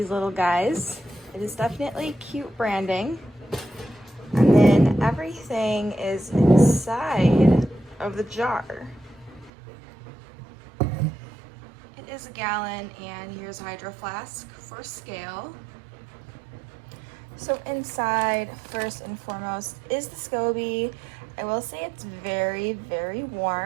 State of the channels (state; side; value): drops out; left; at 9.5 s